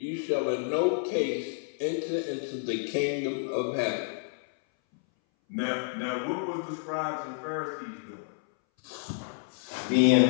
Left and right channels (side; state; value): right; silent; 58 dB below the other